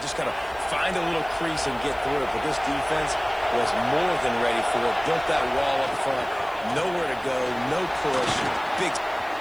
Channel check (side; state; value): right; noise; hiss, 26 dB below the sound